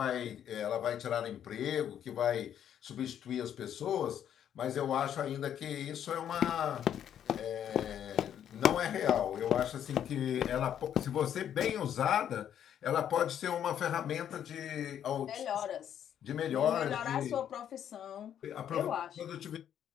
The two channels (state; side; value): quieter; right; 9.7 dB